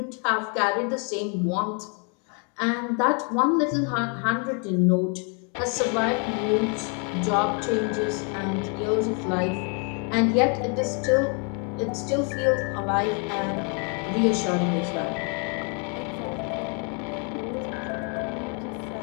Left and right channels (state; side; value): quieter; right; 38.2 dB